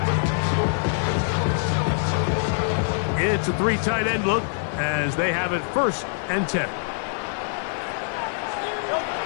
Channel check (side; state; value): right; silent; digital silence